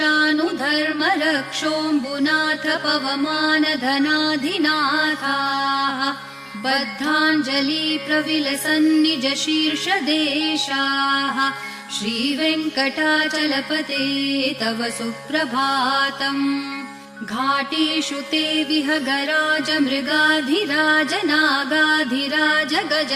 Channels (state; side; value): identical; both; correlation 1.00